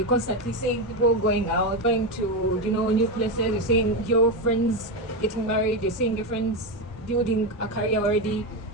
constantly seeing people going out, going to, new places. You're seeing your friends getting married. You're seeing your friends building a career already,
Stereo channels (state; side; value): normal; both; correlation 0.12